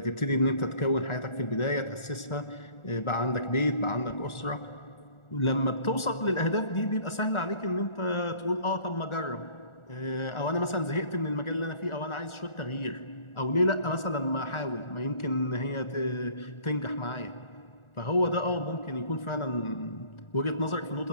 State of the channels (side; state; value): right; late; 1.4 ms